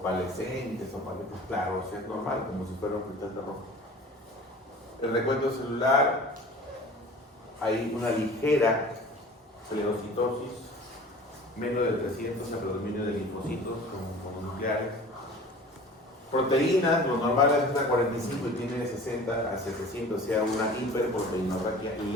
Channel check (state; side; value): normal; both; correlation 0.43